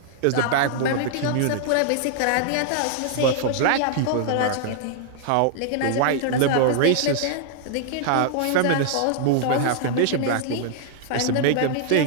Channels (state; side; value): different; both; correlation -0.01